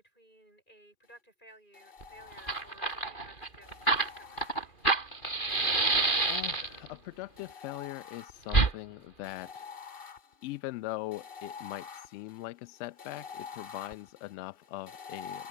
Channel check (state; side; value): late; right; 2.4 ms